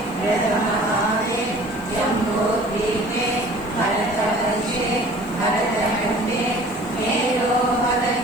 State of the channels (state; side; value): noise; left; hiss, 23 dB below the sound